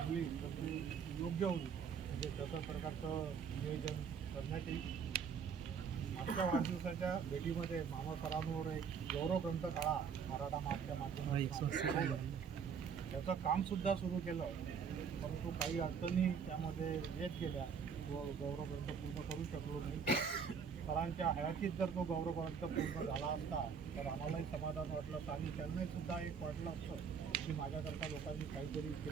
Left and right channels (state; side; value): quieter; left; 6.5 dB